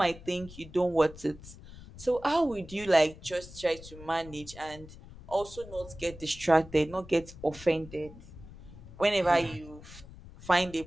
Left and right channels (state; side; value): noise; left; rumble, 17 dB below the sound